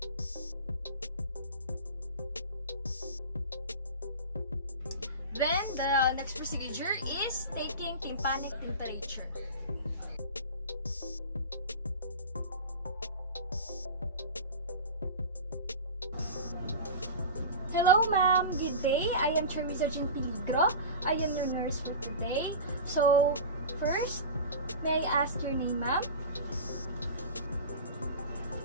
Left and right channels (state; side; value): inverted; both; correlation -0.31